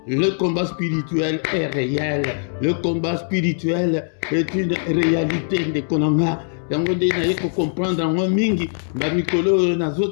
le combat spirituel est réel. Le combat spirituel est une réalité de Konanga. Yango de na yeko comprendre en mingi ba mikolo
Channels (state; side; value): silent; right; digital silence